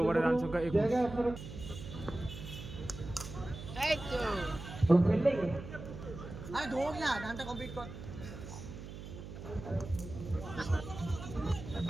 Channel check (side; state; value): right; noise; hum, 11 dB below the sound